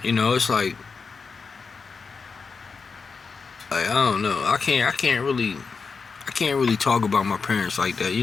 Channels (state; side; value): quieter; right; 5.0 dB